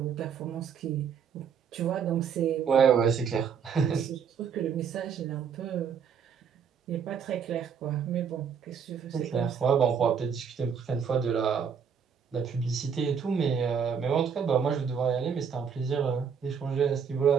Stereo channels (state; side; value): quieter; left; 6.9 dB